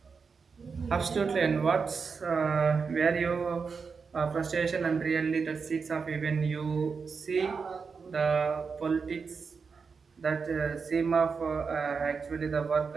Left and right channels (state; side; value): quieter; left; 5.3 dB